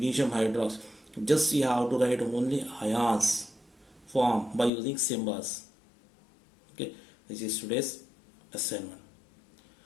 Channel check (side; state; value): right; drops out; at 4.7 s